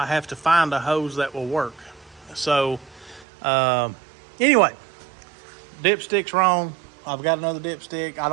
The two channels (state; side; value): drops out; left; at 3.2 s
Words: have to find a hose that will work. So anyway, dipstick's wrong. I've got another dipstick. I